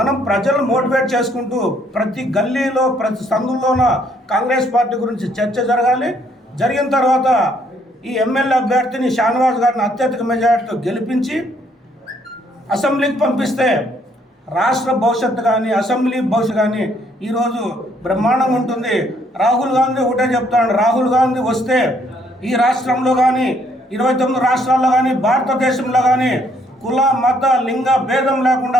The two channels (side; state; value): both; normal; correlation 0.68